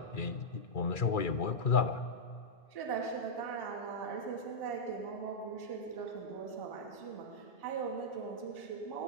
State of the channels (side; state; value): right; late; 2.4 ms